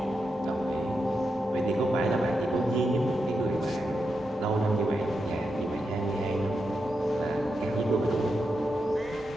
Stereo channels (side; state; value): both; normal; correlation 0.86